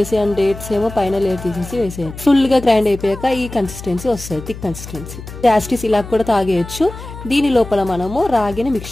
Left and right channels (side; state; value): left; noise; hum, 13 dB below the sound